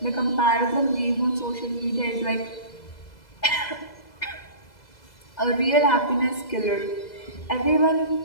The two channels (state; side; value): late; right; 2.0 ms